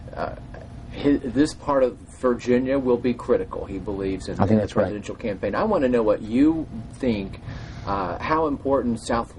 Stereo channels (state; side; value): identical; both; correlation 1.00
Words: this part of Virginia will be critical, he believes, in the presidential campaign. I want to know what you think, how important